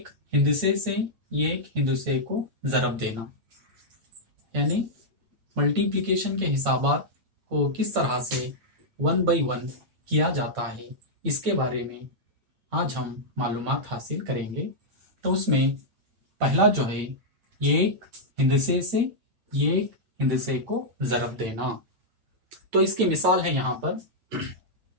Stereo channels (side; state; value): left; late; 8.9 ms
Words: हिंदसे से एक हिंदसे को ज़रब देना यानी मल्टीप्लिकेशन के हिसाबात को किस तरह से 1 बाई 1 किया जाता है, इसके बारे में आज हम मालूमात हासिल करेंगे। तो उसमें पहला जो है एक हिंदसे से एक हिंदसे को ज़रब देना। तो इसकी मिसाल है यहाँ पर